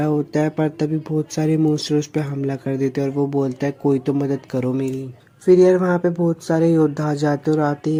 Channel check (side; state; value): both; identical; correlation 1.00